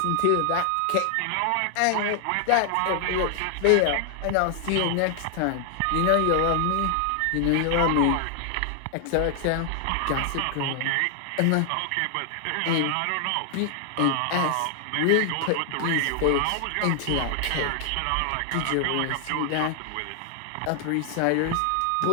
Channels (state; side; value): different; both; correlation 0.00